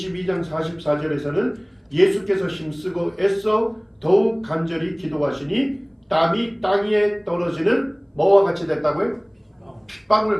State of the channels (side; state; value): both; identical; correlation 1.00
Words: 44절에서는 예수께서 힘쓰고 애써 더욱 간절히 기도하시니 땀이 땅 위에 떨어지는 뭐와 같이 됐다고요?